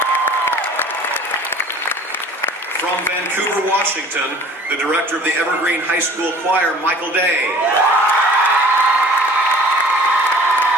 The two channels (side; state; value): both; normal; correlation 0.48